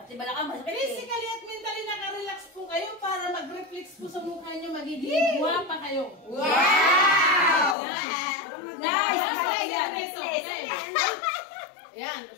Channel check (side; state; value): right; drops out; at 7.8 s